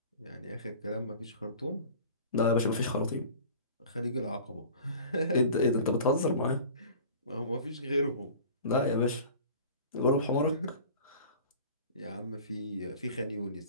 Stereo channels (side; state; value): both; inverted; correlation -0.42